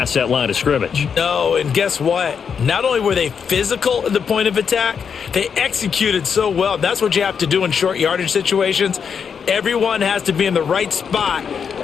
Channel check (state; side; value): quieter; right; 6.8 dB